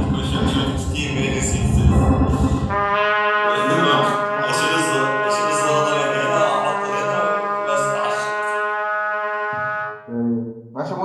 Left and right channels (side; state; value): both; identical; correlation 1.00